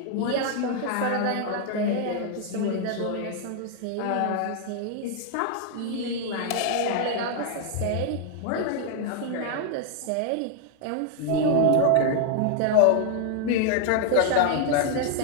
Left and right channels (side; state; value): both; different; correlation 0.00